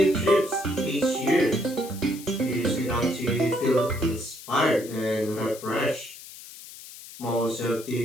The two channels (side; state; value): left; noise; hiss, 16 dB below the sound